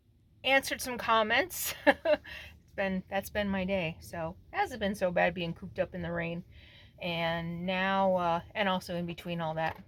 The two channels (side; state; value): both; identical; correlation 1.00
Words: some comments. That's been my day. So it hasn't been so bad being cooped up in the rain. And now, and also in between all that,